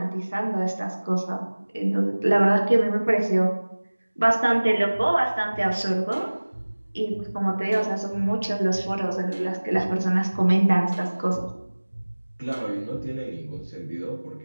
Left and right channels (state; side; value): inverted; both; correlation -1.00